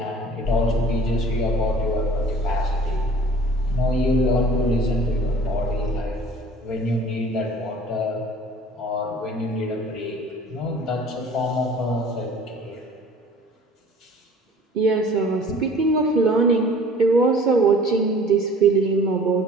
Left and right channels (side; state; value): both; normal; correlation 0.48